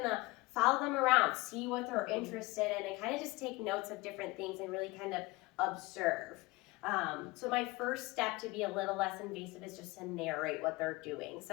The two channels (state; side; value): quieter; right; 22.2 dB